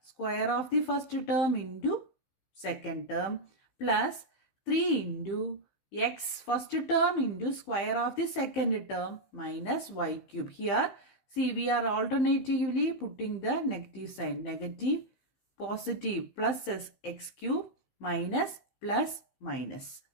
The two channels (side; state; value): right; late; 15 ms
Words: of the first term into second term plus 3 into x first term into square of the second term minus y cube. Here see we are alternatively putting the negative sign, negative, positive, plus x cube minus plus minus.